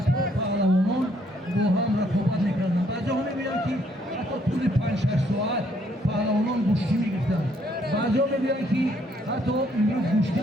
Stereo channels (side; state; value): both; normal; correlation 0.68